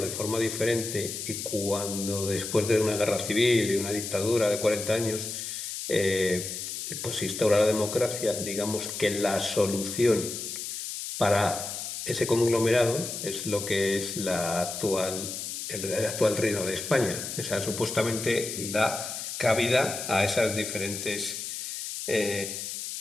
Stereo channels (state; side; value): noise; left; hiss, 6 dB below the sound